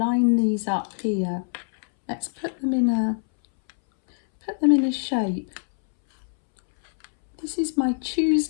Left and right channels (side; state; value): right; silent; 63 dB below the other